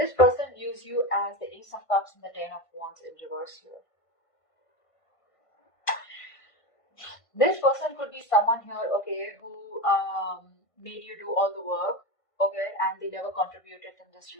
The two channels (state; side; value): late; right; 1.5 ms